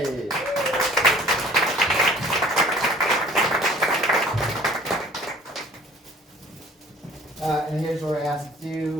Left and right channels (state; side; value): normal; both; correlation 0.51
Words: And here's where I ask